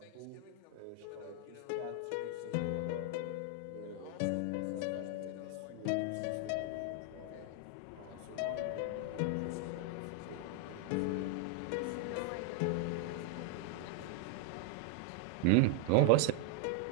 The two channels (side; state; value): both; different; correlation 0.00